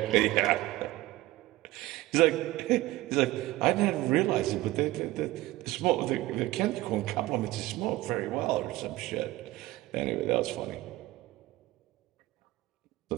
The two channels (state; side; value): quieter; left; 17.8 dB